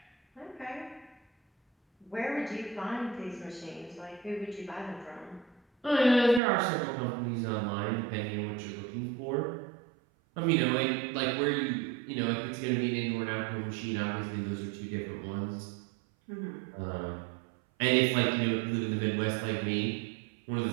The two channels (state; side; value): drops out; left; at 6.4 s